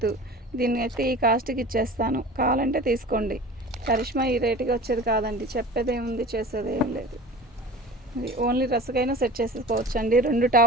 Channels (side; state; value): both; normal; correlation 0.38